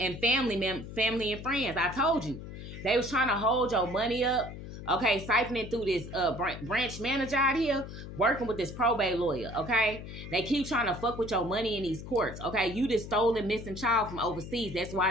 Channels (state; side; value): noise; left; hum, 11 dB below the sound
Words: family and friends. I told you. They was trying to hold your money up. Okay, siphoning through this branch manager out here, working with this probate lawyer, okay? They keep trying to fuck with your money in these courts, okay? You just stole a missing child from overseas. That's